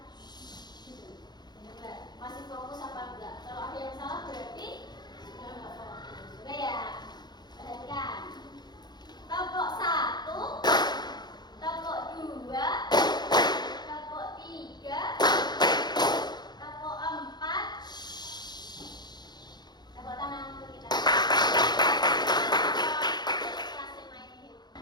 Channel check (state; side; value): late; right; 0.21 ms